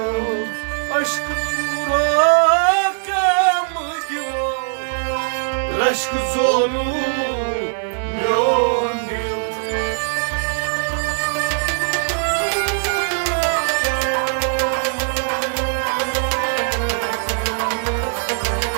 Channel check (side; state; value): left; silent; digital silence